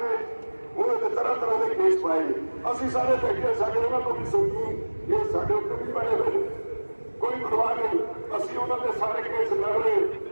ਨੇ ਉਹਨਾਂ ਦੇ ਤਰ੍ਹਾਂ ਤਰ੍ਹਾਂ ਦੇ ਕੇਸ ਪਾਏ ਨੇ। ਅਸੀਂ ਸਾਰੇ ਬੈਠੇ, ਸਾਡੇ ਉਹਨਾਂ ਤੋਂ ਵੀ ਸੁਣੀ, ਇਹ ਸਾਡੇ ਉੱਤੇ ਵੀ ਪਏ ਹੋਏ ਨੇ। ਕੋਈ ਪਰਵਾਹ ਨਹੀਂ। ਉਹਨਾਂ ਦੇ ਸਾਰੇ ਕੇਸ ਲੜ ਰਹੇ,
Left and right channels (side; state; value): both; inverted; correlation -1.00